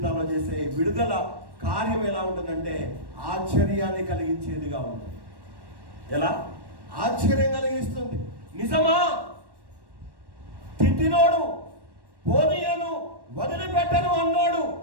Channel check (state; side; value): late; left; 1.1 ms